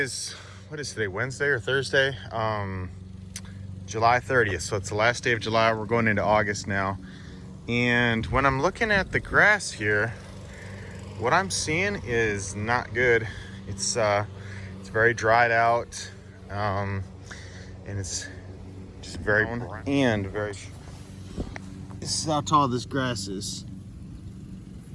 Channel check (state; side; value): identical; both; correlation 1.00